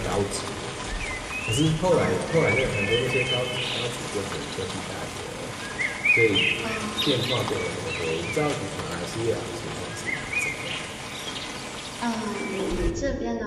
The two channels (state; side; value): identical; both; correlation 1.00